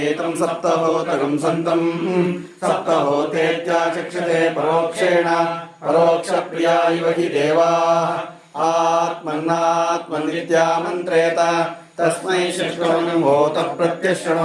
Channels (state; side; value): identical; both; correlation 1.00